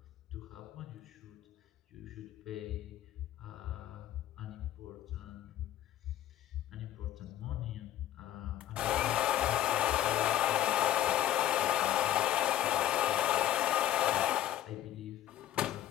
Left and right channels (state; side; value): quieter; right; 12.7 dB